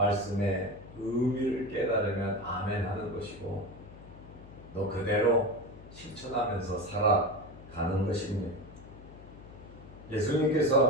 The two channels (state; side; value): noise; left; hum, 18 dB below the sound